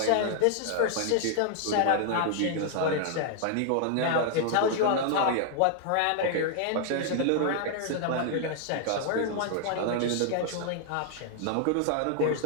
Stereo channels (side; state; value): both; different; correlation 0.00